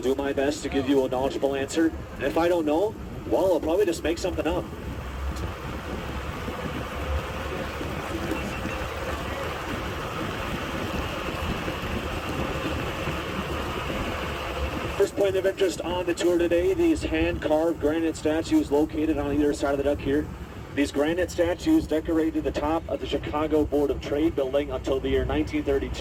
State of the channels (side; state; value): both; identical; correlation 1.00